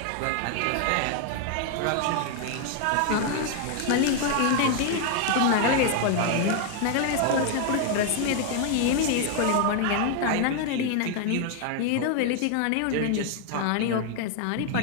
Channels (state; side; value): different; both; correlation 0.00